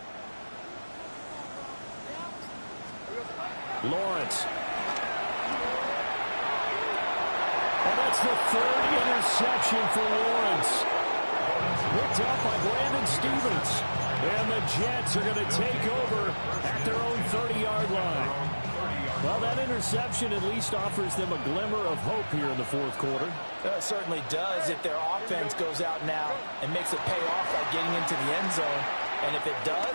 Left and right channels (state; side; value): inverted; both; correlation -1.00